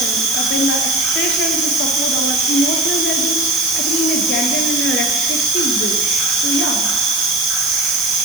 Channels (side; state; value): right; noise; hiss, 5 dB below the sound